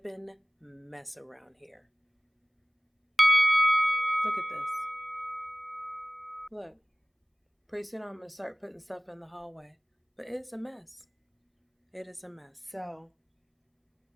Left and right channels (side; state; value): both; identical; correlation 1.00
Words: mess around here. Look at this. Look, pretty soon I'm gonna start putting stuff in the hallway. But it's a mess. It is a mess. So,